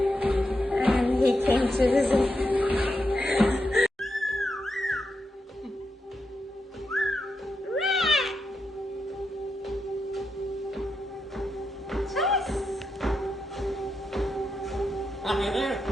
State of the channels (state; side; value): normal; both; correlation 0.85